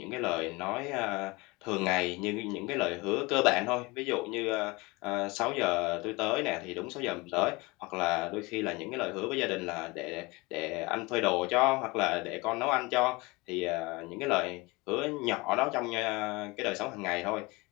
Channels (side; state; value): right; quieter; 24.5 dB